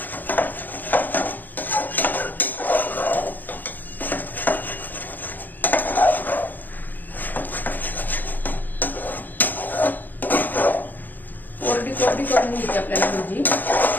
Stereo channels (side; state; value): right; late; 0.090 ms